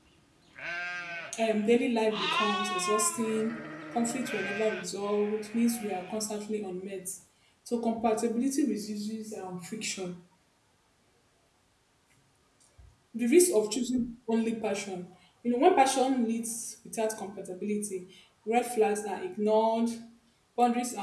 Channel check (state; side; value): identical; both; correlation 1.00